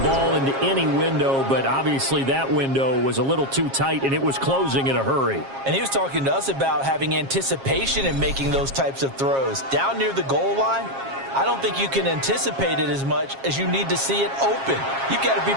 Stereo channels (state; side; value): late; left; 7.4 ms